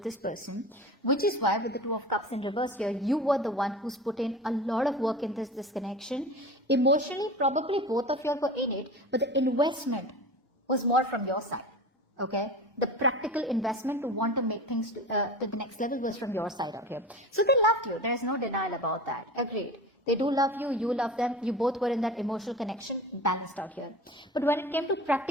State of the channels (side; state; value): both; normal; correlation 0.33